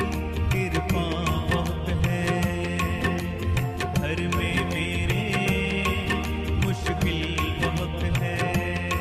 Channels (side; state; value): both; identical; correlation 1.00